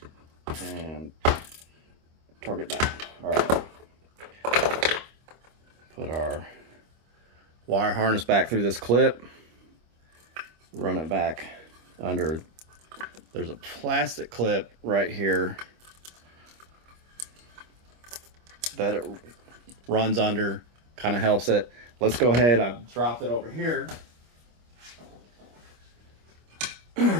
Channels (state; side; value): late; left; 25 ms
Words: and torque it down. All right. Put our wire harness back through this clip. Run it back under there's a plastic clip right here that it runs under, kind of helps it. Let's go ahead, I've dropped it over here.